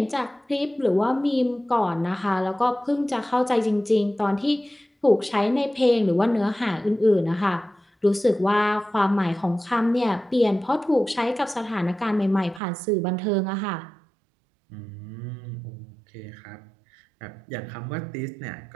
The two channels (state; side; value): drops out; left; at 12.6 s